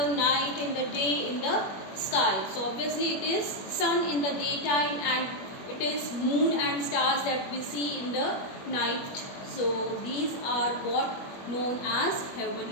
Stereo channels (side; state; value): right; late; 21 ms